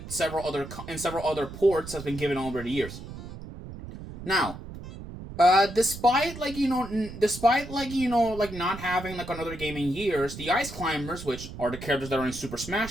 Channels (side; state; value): right; noise; rumble, 12 dB below the sound